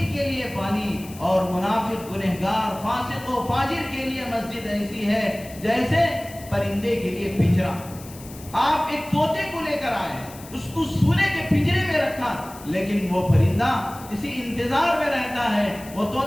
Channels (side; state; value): left; noise; hiss, 18 dB below the sound